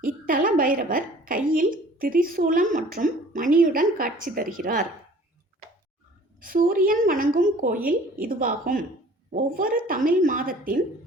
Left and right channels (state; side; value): normal; both; correlation 0.50